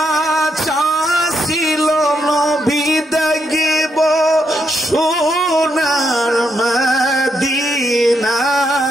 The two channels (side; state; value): both; normal; correlation 0.79